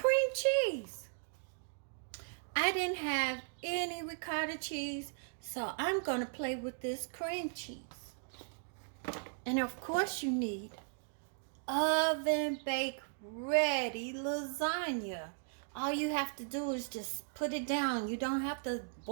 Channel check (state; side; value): silent; left; digital silence